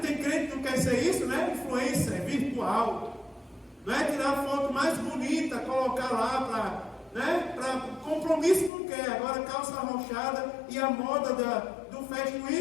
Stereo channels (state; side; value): drops out; right; at 8.7 s